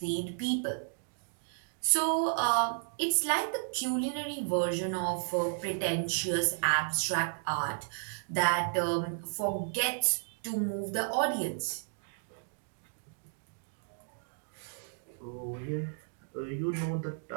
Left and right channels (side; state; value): left; silent; digital silence